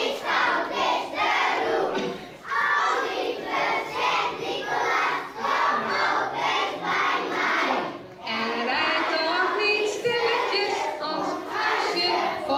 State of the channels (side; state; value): both; identical; correlation 1.00